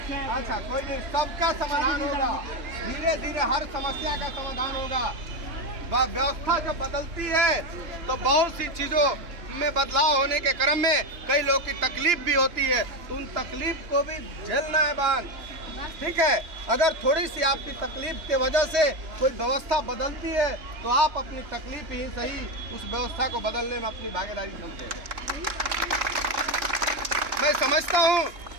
अच्छा कोई नहीं, सबका समाधान होगा, धीरे धीरे हर समस्या का समाधान होगा। व्यवस्था जब बदलती है तो बहुत सी चीजों में बदलाव होने के क्रम में कई लोग की तकलीफ भी होती है, तो उन तकलीफ को भी झेलना है बान। ठीक है, अगर थोड़ी सी आपकी तकलीफ के वजह से कोई व्यवस्था बदलती है तो आप अपनी तकलीफ ही सही उस व्यवस्था को बदलने में अपनी भागीदारी समझे। मैं समझता हूँ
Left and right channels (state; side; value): late; left; 2.9 ms